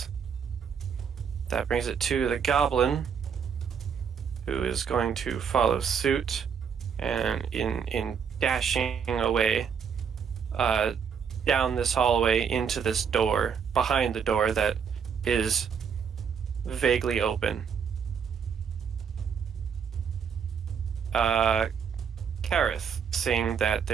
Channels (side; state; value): left; quieter; 7.0 dB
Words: That brings it to the goblin, who is going to follow suit, and in dashing away down this hallway into this door, behind the door that is vaguely open. Carrath, seeing that